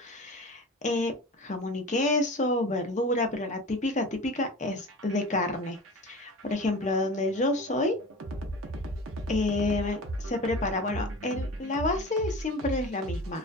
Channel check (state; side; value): normal; both; correlation 0.34